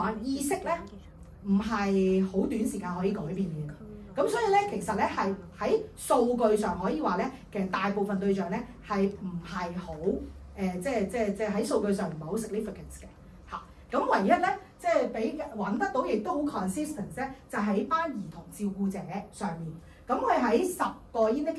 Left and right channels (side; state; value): both; identical; correlation 1.00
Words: 意識咧唔係好短時間可以改變嘅。咁所以咧，其實咧係喺數據上可以話咧，其實大部分對象咧係唔係好即係喺數據上唔係好 significant 嘅嚇。咁唯一咧，即係比揾得到，亦都好 consistent 咧，就喺班兒童照顧者上面。咁佢喺10個